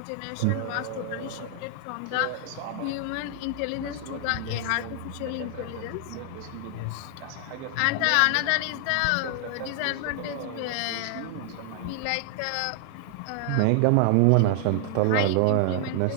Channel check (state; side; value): different; both; correlation 0.00